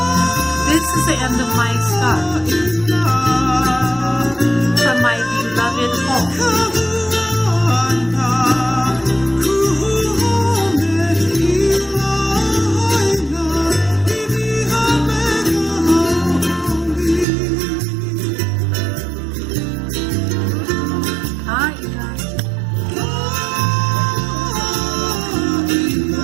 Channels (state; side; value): drops out; left; at 17.2 s